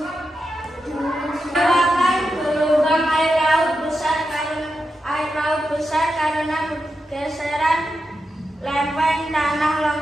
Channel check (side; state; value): both; normal; correlation 0.88